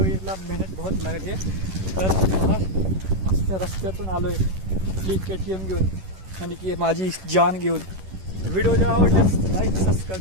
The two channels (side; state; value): left; late; 11 ms